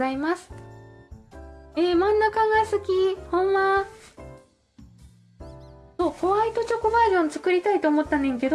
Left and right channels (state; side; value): identical; both; correlation 1.00